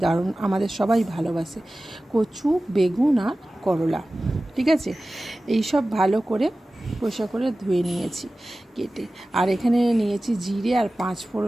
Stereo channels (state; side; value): normal; both; correlation 0.96